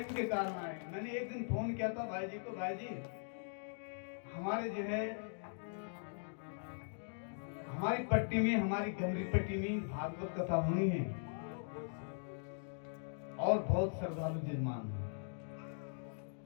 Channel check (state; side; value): silent; right; digital silence